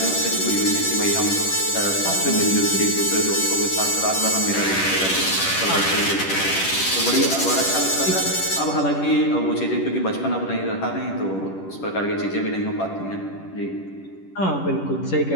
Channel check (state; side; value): late; right; 10 ms